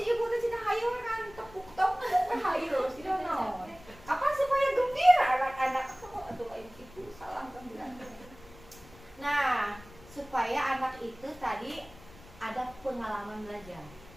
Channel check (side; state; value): left; noise; rumble, 21 dB below the sound